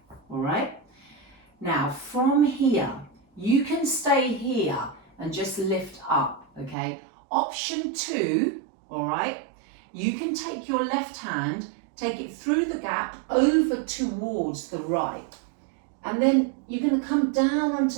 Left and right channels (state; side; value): drops out; left; at 6.8 s